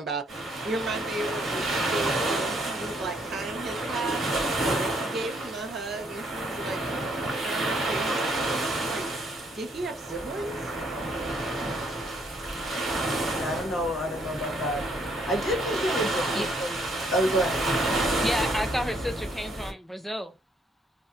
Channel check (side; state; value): both; normal; correlation 0.69